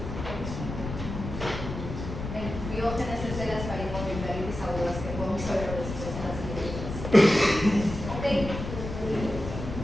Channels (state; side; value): noise; left; rumble, 7 dB below the sound